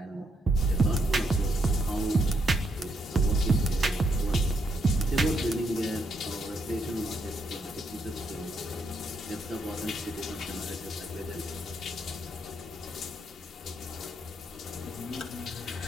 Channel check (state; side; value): normal; both; correlation 0.77